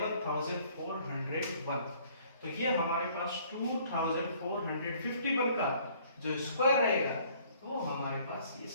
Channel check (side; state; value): both; inverted; correlation -0.59